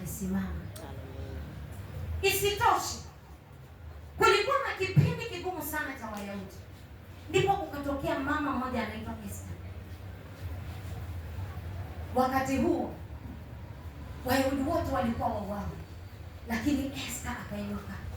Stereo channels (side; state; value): both; identical; correlation 1.00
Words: Isitoshe, kulikuwa na kipindi kigumu sana cha Wayahudi. Ndipo kukatokea mama mmoja anaitwa Esther. Wakati huo Wayahudi wote walikuwa wauawa, lakini Esther akainuka